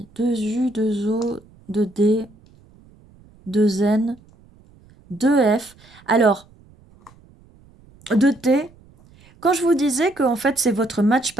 2 U, 2 O, 2 D, 2 N, 2 F. Alors, 2 T. Quand je vous disais que en fait c'est votre match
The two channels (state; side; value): noise; right; rumble, 28 dB below the sound